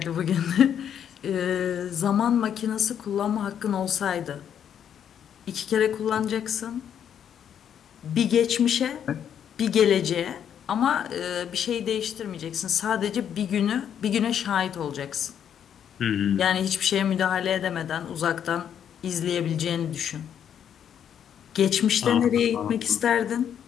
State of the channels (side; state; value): right; quieter; 8.9 dB